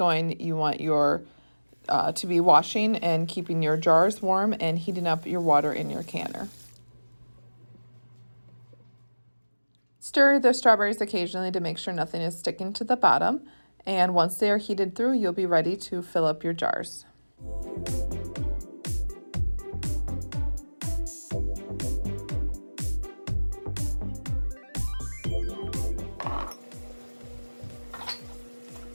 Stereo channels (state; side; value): inverted; both; correlation -1.00